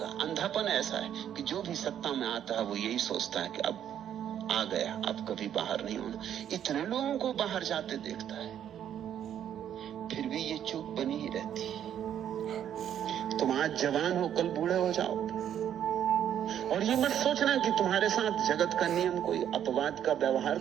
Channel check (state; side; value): quieter; left; 9.9 dB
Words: अंधापन ऐसा है कि जो भी सत्ता में आता है वो यही सोचता है कि अब आ गया, अब कभी बाहर नहीं होना। इतने लोगों को बाहर जाते देखता है, फिर भी ये चूक बनी ही रहती है। तुम आज जवान हो, कल बूढ़े हो जाओगे। और ये मत सोचना कि तुम्हारे साथ जगत का नियम कोई अपवाद का व्यवहार